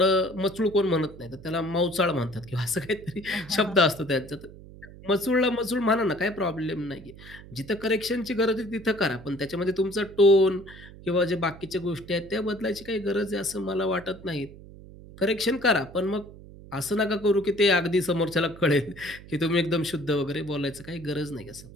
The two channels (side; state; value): right; noise; hum, 18 dB below the sound